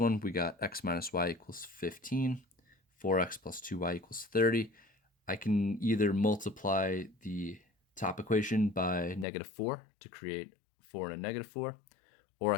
we got x minus y equals 15, 4x plus 2y equals 30. I can either multiply the top equation by -4 to create 4 and a -4, or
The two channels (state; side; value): drops out; right; at 9.2 s